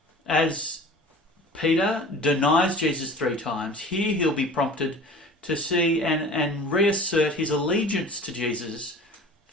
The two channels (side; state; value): both; normal; correlation 0.42